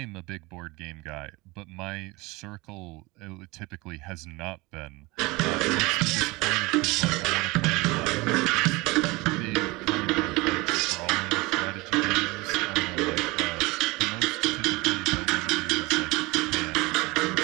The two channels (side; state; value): left; quieter; 23.3 dB